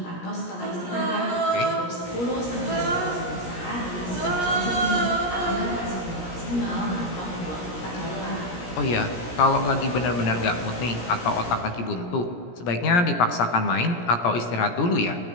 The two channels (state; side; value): late; right; 17 ms